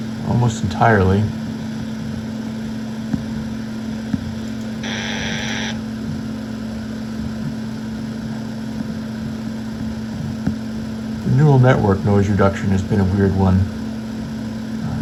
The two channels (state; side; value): identical; both; correlation 1.00